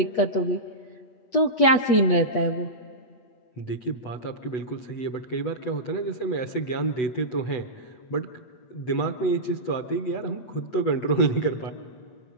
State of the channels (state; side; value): late; right; 8.4 ms